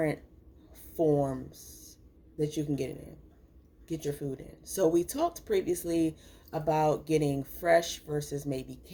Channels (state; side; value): identical; both; correlation 1.00